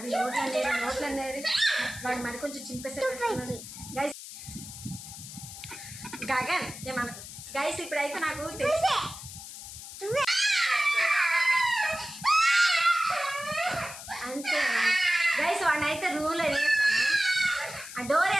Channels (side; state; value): left; noise; hiss, 12 dB below the sound